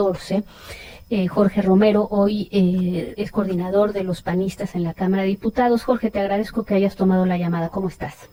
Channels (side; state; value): both; identical; correlation 1.00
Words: Jorge Romero hoy es coordinador de los panistas en la Cámara de Diputados. Jorge, te agradezco que hayas tomado la llamada. ¿Cómo estás?